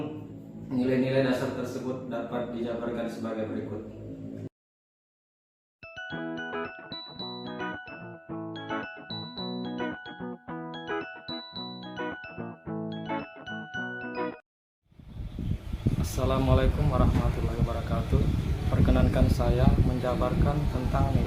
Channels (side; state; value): both; identical; correlation 1.00